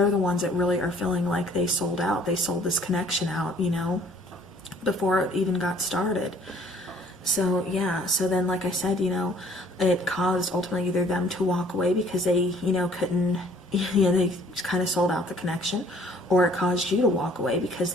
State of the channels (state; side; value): normal; both; correlation 0.57